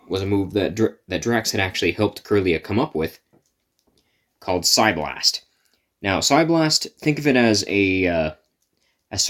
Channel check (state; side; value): identical; both; correlation 1.00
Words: move that Drax had actually helped Curlia come up with, called Psyblast. Now, Psyblast, think of it as